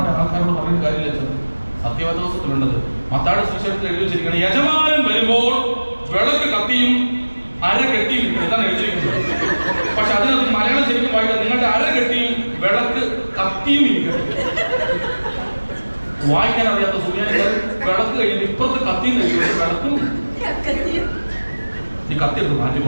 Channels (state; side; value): inverted; both; correlation -1.00